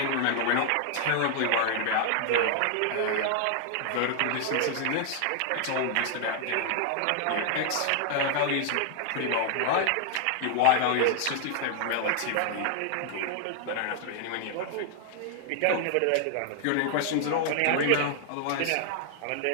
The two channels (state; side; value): different; both; correlation 0.00